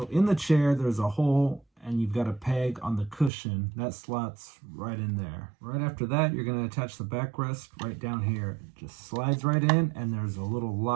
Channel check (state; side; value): drops out; left; at 3.3 s